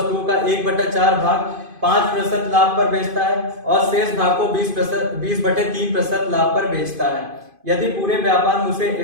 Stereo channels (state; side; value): late; left; 2.5 ms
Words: का 1/4 भाग 5% लाभ पर बेचता है और शेष भाग को 20/3% लाभ पर बेचता है। यदि पूरे व्यापार में उसे